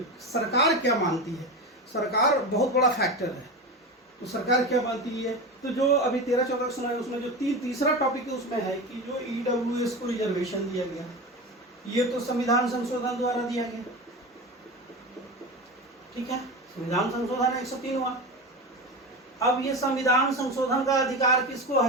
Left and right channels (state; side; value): normal; both; correlation 0.24